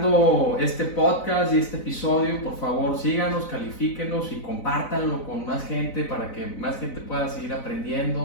este podcast y este episodio, por favor síganos, califíquenos y compártanlo con más gente, para que más gente pueda seguir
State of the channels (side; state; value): right; late; 4.0 ms